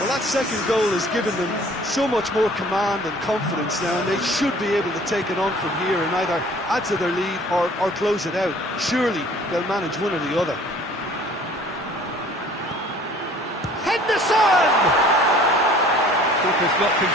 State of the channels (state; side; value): normal; both; correlation 0.51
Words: that second goal has given them so much more command and confidence now, and they should be able to take it on from here and either add to their lead or close it out. Surely they'll manage one or the other. Henderson! Keeper's not